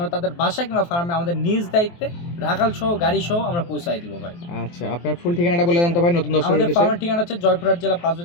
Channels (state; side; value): late; right; 23 ms